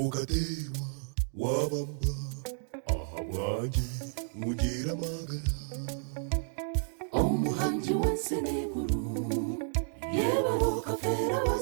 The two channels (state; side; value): silent; left; digital silence